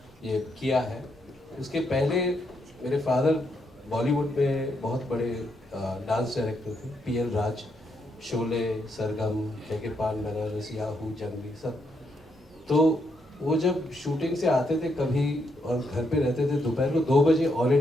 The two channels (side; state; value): both; normal; correlation 0.78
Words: ये किया है। उसके पहले मेरे फादर बॉलीवुड में बहुत बड़े डांस डायरेक्टर थे, PL राज, शोले, सरगम, के पान बनारस, याहू, जंगली सब। तो वो जब शूटिंग से आते थे कभी और घर पे रहते थे, दोपहर को 2 बजे ऑल